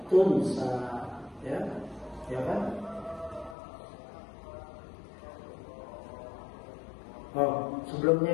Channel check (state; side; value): drops out; right; at 3.6 s